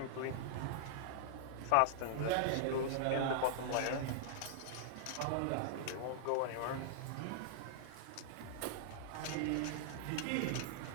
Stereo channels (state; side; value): different; both; correlation -0.01